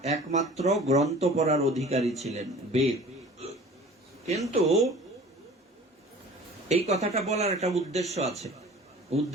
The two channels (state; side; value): normal; both; correlation 0.44